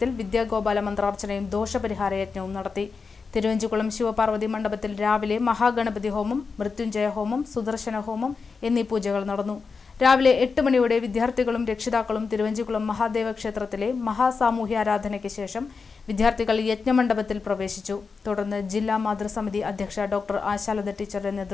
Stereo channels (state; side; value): quieter; right; 4.9 dB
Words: വിദ്യാഗോപാല മന്ത്രാർച്ചനയും ദോഷപരിഹാര യജ്ഞവും നടത്തി. തിരുവഞ്ചിക്കുളം ശിവപാർവതി മണ്ഡപത്തിൽ രാവിലെ മഹാഗണപതി ഹോമം, മൃത്യുഞ്ജയ ഹോമം, സുദർശന ഹോമം എന്നീ പൂജകൾ നടന്നു. രാവിലെ 8 മണിയോടെ വിദ്യാർത്ഥികളും രക്ഷിതാക്കളും തിരുവഞ്ചിക്കുളം മഹാദേവ ക്ഷേത്രത്തിലെ മഹാസാമൂഹ്യാരാധനയ്ക്ക് ശേഷം വിദ്യാർത്ഥികൾ യജ്ഞമണ്ഡപത്തിൽ പ്രവേശിച്ചു. തുടർന്ന് ജില്ലാ മാതൃസമിതി അധ്യക്ഷ ഡോക്ടർ ആശാലത ടീച്ചറുടെ